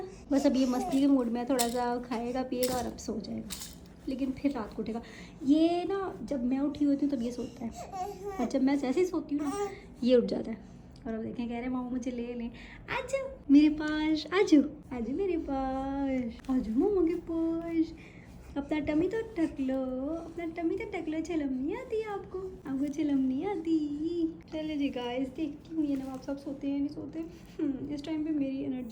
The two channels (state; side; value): identical; both; correlation 1.00